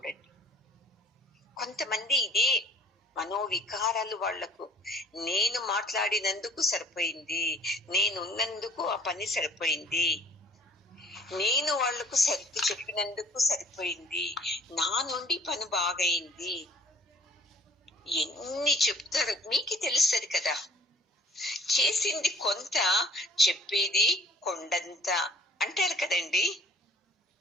కొంతమంది ఇదే మనోవికారాలు వాళ్లకు. నేను మాట్లాడినందుకు సరిపోయింది, నేనున్నందుకు ఆ పని సరిపోయింది, నేను వాళ్లకు సర్ది చెప్పినందుకు సరిపోయింది, నా నుండి పని బాగైంది, ఎన్ని చెప్తారు మీకు తెలుస్తుంది కదా. చేసింది కొంత, చెప్పేది కొండంత అంటారు కదండి.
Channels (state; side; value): normal; both; correlation 0.52